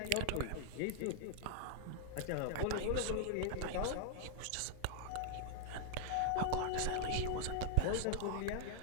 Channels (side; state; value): both; different; correlation -0.01